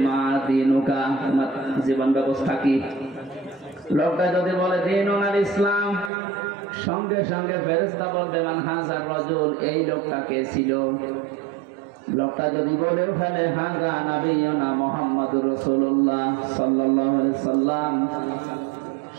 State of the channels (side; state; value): left; drops out; at 6.1 s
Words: মা দিনুকা, তোমার জীবন ব্যবস্থা কি। লোকটা যদি বলে দীনুল ইসলাম, সঙ্গে সঙ্গে ফেরেশতা বলবে মান হাযার রাজুল, এই লোকটা কে ছিল। লোকটা যদি বলেও ফেলে হাযা নবিয়ুনা মুহাম্মাদুর রাসূলুল্লাহ সাল্লাল্লাহু আলাইহি সাল্লাম,